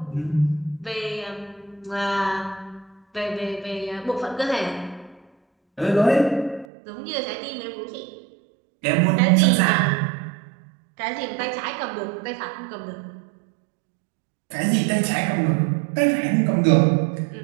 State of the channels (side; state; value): left; drops out; at 6.7 s